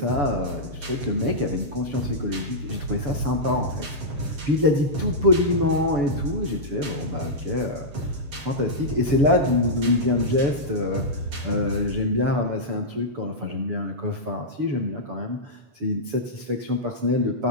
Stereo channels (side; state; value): left; late; 7.0 ms